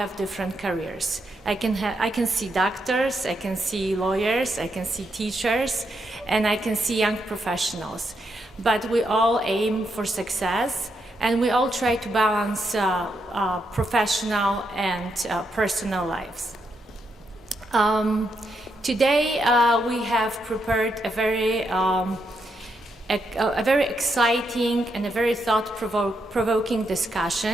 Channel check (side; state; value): both; normal; correlation 0.80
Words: different careers. I can see doctors, I can see lawyers, I can see teachers, and I can see young professionals. But we all aim for success and we all try to balance professional and personal lives. Today we have prepared a very exciting and a very thought-provoking